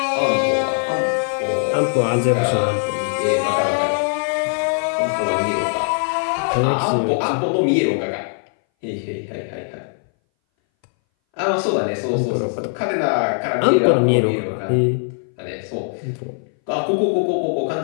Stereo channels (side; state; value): right; silent; 61 dB below the other